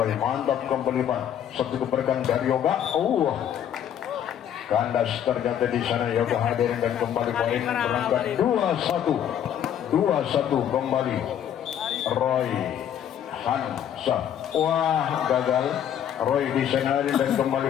mantap kembali satu keberkan dari Yoga. Kandas ternyata di sana Yoga hadir dan kembali poin berangkat 2-1 kembali Roy Hansa. Wah, gagal Roy di sana dan kembali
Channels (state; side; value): quieter; right; 9.8 dB